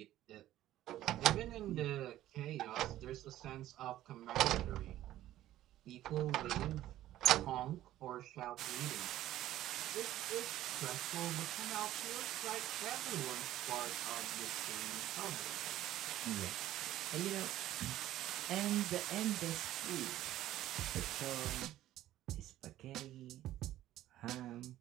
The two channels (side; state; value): left; quieter; 13.9 dB